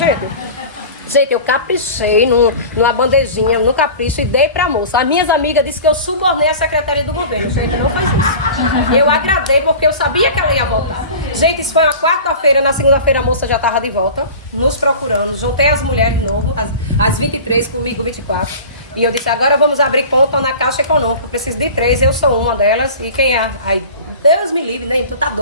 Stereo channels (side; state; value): both; inverted; correlation -0.37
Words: Gente, eu caprichei numa bandejinha, no capricho, e dei pra moça. As minhas amigas disseram que eu subornei a secretária do governo. Gente, não faz isso. Eu agradei porque eu sabia que ela ia voltar. Gente, isso foi uma quarta-feira. Na segunda-feira a moça já estava de volta, nos procurando. Juntei as mulheres de novo, as 23, comigo 24. E eu disse, agora vamos abrir conta na Caixa Econômica. Eu preciso de 3, eu sou uma delas. E quem é? Aí, Deus me livre, Neide, tu tá